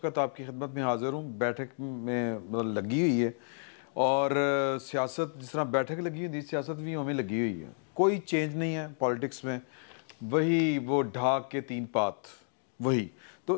आपकी खिदमत में हाज़िर हूँ। बैठक में मतलब लगी हुई है और सियासत जिस तरह बैठक लगी हुई थी, सियासत भी हमें लगी हुई है। कोई चेंज नहीं है पॉलिटिक्स में, वही वो ढाक के तीन पात वही।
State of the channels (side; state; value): right; silent; digital silence